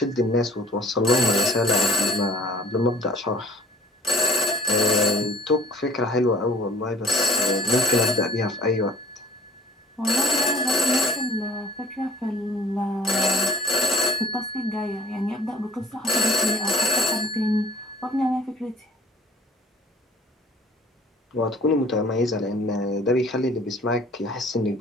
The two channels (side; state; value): both; normal; correlation 0.51